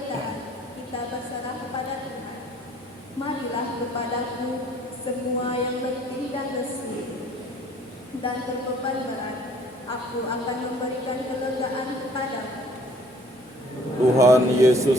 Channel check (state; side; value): normal; both; correlation 0.55